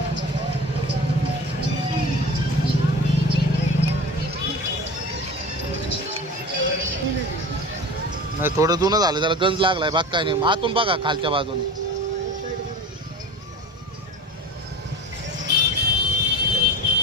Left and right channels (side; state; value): both; normal; correlation 0.34